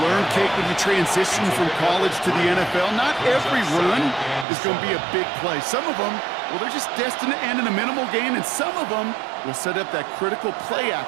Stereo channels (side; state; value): left; drops out; at 4.5 s